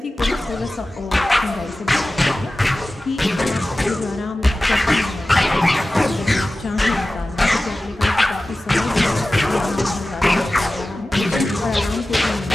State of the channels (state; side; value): normal; both; correlation 0.96